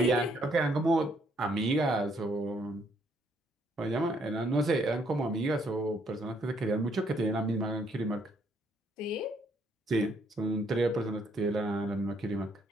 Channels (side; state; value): both; normal; correlation 0.69